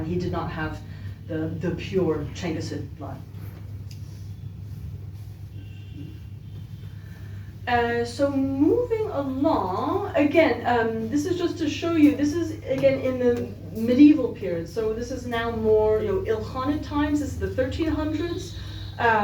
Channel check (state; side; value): identical; both; correlation 1.00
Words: He did not have the pure Changgisid blood. So moving along, again, this is just to show you, this is again in the medieval period. So this is now more Ilkhanid times, this is the 1300s.